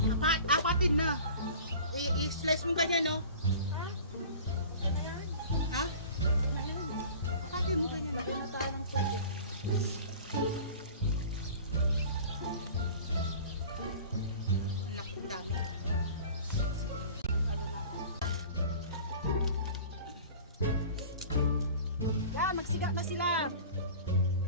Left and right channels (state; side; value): inverted; both; correlation -0.41